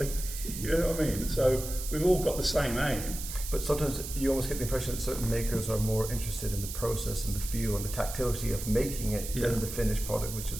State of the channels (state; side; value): noise; right; hiss, 8 dB below the sound